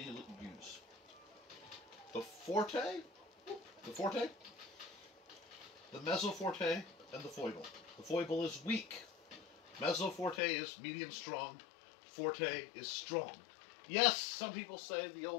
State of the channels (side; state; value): right; drops out; at 10.4 s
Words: use. The forte, the mezzoforte, and the foible. The foible is weak. Mezzoforte is medium strong. Forte is strong. Yes, some people say the